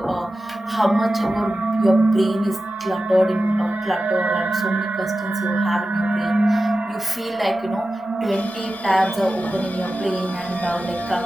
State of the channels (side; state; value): both; normal; correlation 0.93